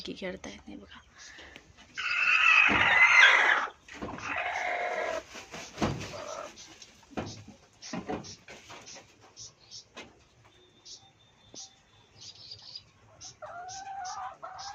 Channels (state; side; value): identical; both; correlation 1.00